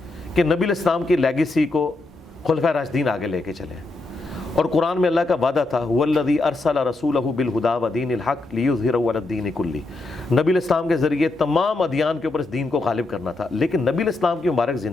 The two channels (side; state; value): right; quieter; 3.1 dB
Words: کہ نبی الاسلام کی لیگیسی کو خلفائے راشدین آگے لے کے چلے. اور قرآن میں اللہ کا وعدہ تھا هو الذی ارسل رسولہ بالہدی ودین الحق لیظہرہ علی الدین کلہ. نبی الاسلام کے ذریعے تمام ادیان کے اوپر اس دین کو غالب کرنا تھا. لیکن نبی الاسلام کی مبارک